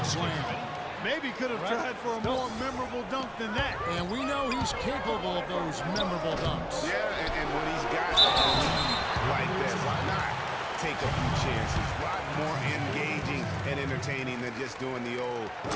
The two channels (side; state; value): both; identical; correlation 1.00